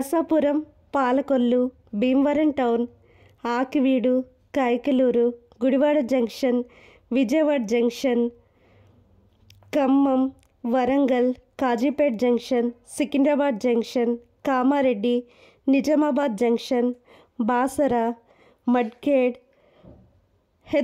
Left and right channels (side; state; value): both; identical; correlation 1.00